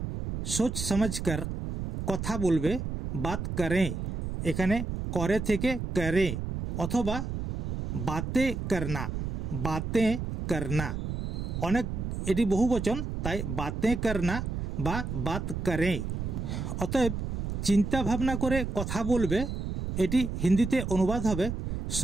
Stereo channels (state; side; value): noise; right; rumble, 4 dB below the sound